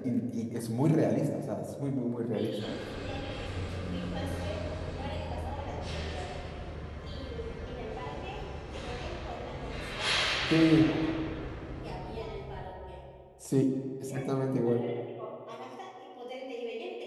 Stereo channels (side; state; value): both; identical; correlation 1.00